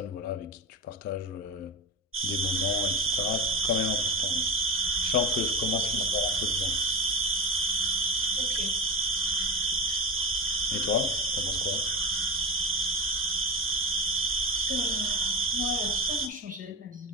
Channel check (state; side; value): normal; both; correlation 0.24